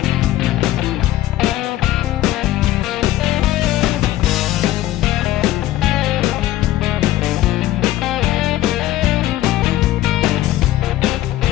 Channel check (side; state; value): right; quieter; 14.9 dB